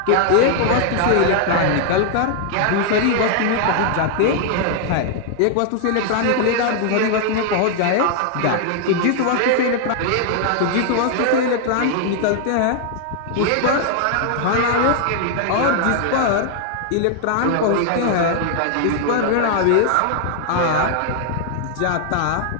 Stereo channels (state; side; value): different; both; correlation 0.00